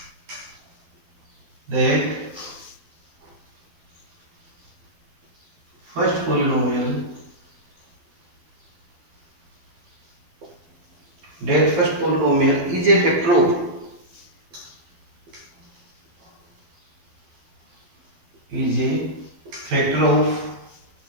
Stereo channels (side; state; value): left; late; 12 ms